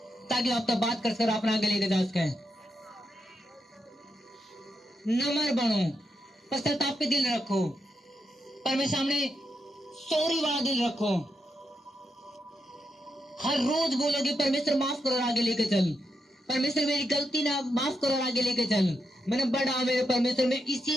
ताकि आप तो बात कर अपना आगे लेकर जा सके। नम्र बनो, पश्चाताप पे दिल रखो, परमेश्वर सामने सॉरी वाला दिल रखो। हर रोज बोलोगे परमेश्वर माफ करो, आगे लेके चल। परमेश्वर मेरी गलती ना माफ करो, आगे लेके चल। मैंने बड़ा मेरे परमेश्वर में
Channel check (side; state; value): both; normal; correlation 0.84